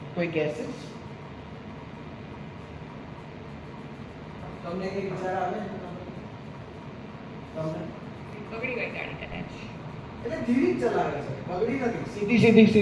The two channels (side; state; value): both; identical; correlation 1.00